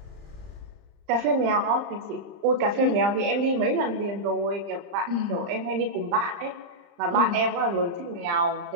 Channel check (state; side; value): late; left; 35 ms